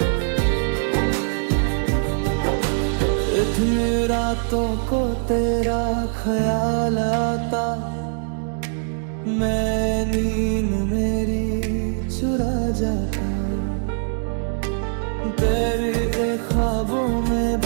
इतनी रातों को तेरा ख्याल आता, मैं नींद मेरी चुरा जाता। तेरे ख्वाबों में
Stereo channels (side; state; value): left; silent; digital silence